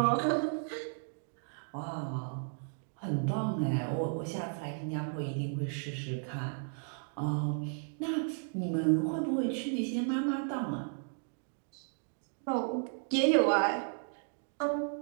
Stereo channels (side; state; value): left; silent; 55 dB below the other